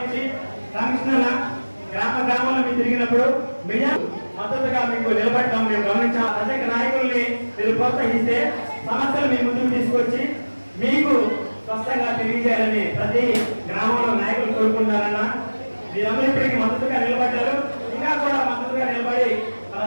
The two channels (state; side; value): inverted; both; correlation -1.00